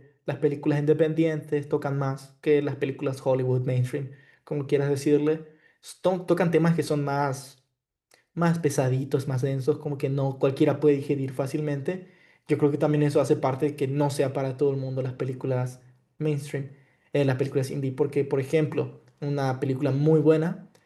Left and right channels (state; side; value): identical; both; correlation 1.00